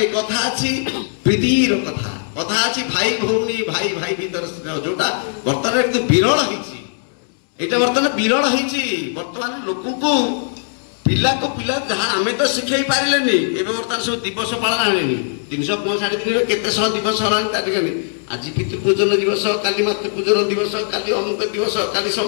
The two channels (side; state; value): right; silent; digital silence